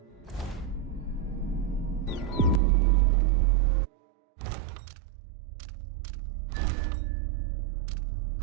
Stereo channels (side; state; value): left; drops out; at 2.6 s